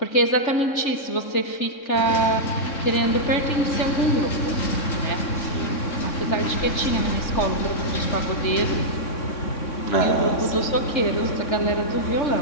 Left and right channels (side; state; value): right; late; 3.6 ms